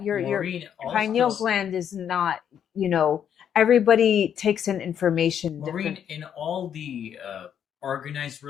your Maureen, pineal also, gland is not, everybody takes in information Maureen, different. in all the organized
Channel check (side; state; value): right; quieter; 8.9 dB